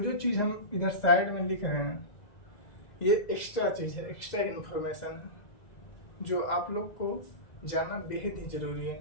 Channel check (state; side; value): late; right; 2.0 ms